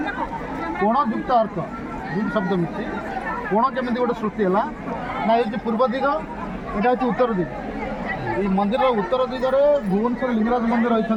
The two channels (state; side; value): identical; both; correlation 1.00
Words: कोणयुक्त अर्क दुई शब्द मिशी कोण केमी गोटे सृष्टि है ना ये पूर्व दिग यहाँ हूँ उत्तर दिग ये मंदिर उत्तर दिगरे भुवनेश्वर लिंगराज मंदिर रही